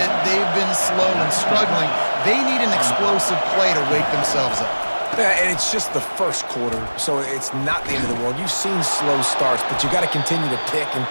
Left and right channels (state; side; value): inverted; both; correlation -1.00